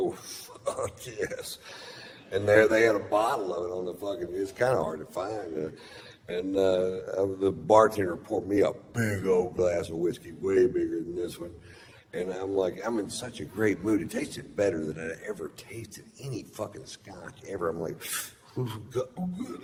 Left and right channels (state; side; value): identical; both; correlation 1.00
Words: fuck yes. And there they had a bottle of it on the fucking, it's kind of hard to find. And the bartender poured me a big old glass of whiskey, way bigger than this one. And I'm like, I'm in such a great mood. It tasted better than I ever tasted any fucking scotch ever. I'm like, oh, good